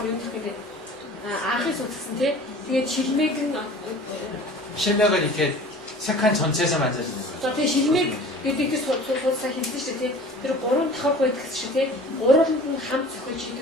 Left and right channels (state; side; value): normal; both; correlation 0.43